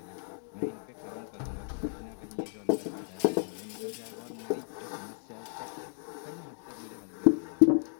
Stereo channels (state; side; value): silent; right; digital silence